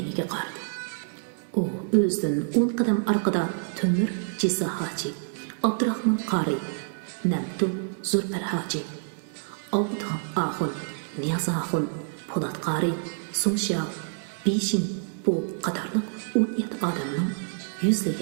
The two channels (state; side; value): silent; left; digital silence